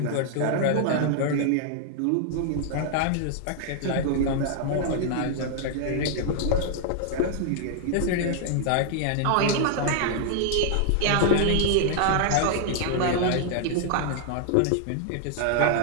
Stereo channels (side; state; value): both; different; correlation -0.01